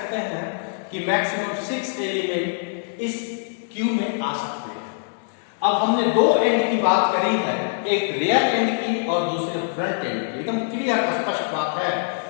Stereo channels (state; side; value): silent; right; 63 dB below the other